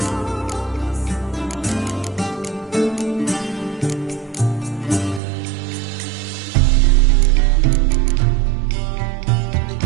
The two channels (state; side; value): drops out; left; at 5.2 s